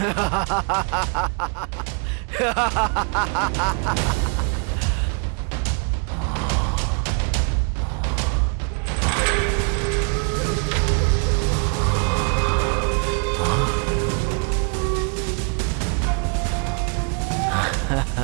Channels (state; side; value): quieter; left; 37.4 dB